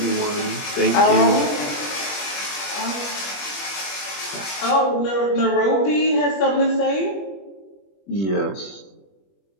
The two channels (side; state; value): right; late; 21 ms